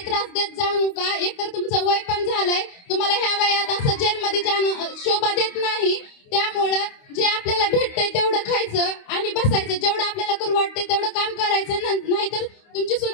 त्रास देत जाऊ नका. एकतर तुमचं वय पण झालंय, तुम्हाला ह्या वयात असं जेलमध्ये जाणं शोभा देत नाही. त्यामुळं जे आपल्याला भेटतंय तेवढं खायचं आणि बसायचं. जेवढं आपल्याला करू वाटतंय तेवढं काम करायचं, नाहीतर तुमची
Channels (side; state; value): right; late; 29 ms